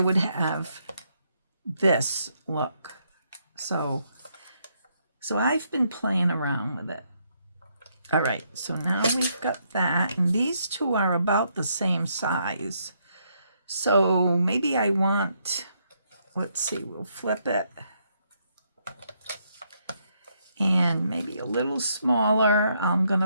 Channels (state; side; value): inverted; both; correlation -0.75